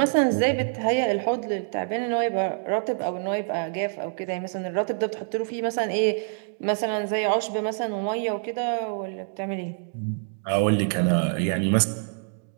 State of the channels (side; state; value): left; silent; digital silence